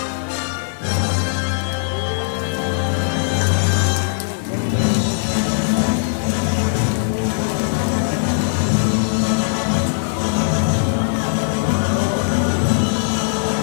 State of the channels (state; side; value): silent; right; digital silence